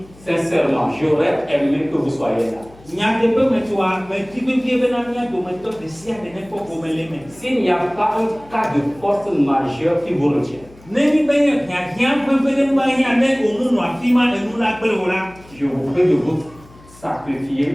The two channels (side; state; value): left; noise; hum, 24 dB below the sound